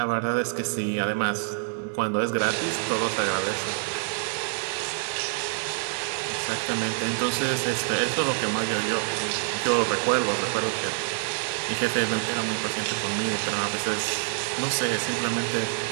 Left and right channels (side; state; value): left; silent; digital silence